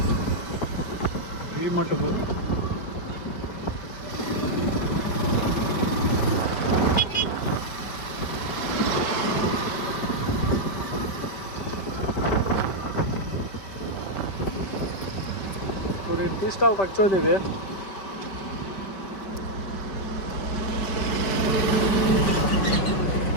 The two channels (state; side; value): late; right; 5.1 ms